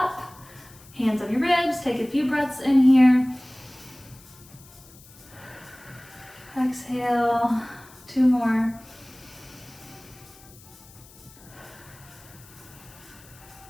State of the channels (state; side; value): noise; left; hiss, 23 dB below the sound